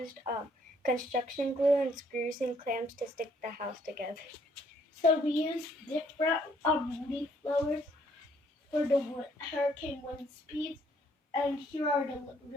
construction glue and screws and clamps to stick the house together. So we used different leaf blowers for the hurricane wind speeds, and here are the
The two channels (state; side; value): normal; both; correlation 0.66